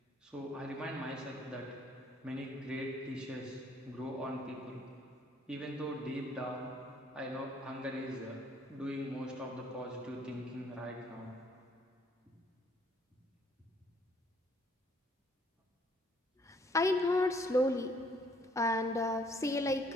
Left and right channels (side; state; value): both; normal; correlation 0.64